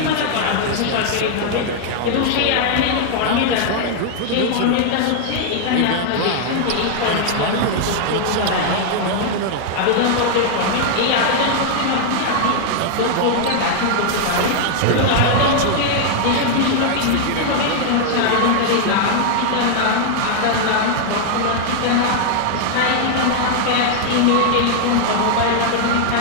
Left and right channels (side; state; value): both; different; correlation 0.00